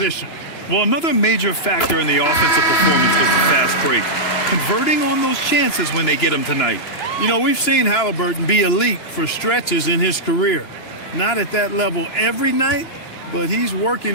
Well, another major factor in the offensive performance was the fast break. Converting on those chances when they get them tonight. You know, we've seen Halliburton be elite for stretches in his career. Not at that level every night, but he's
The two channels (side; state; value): right; late; 3.0 ms